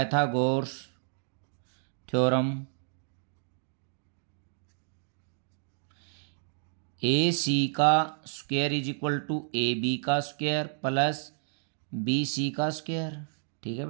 theorem, A C का square is equal to A B का स्क्वायर प्लस बी सी का स्क्वायर। ठीक है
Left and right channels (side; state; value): left; silent; digital silence